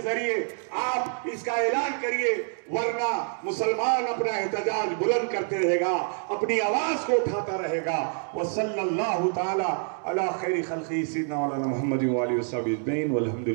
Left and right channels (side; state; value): left; silent; 58 dB below the other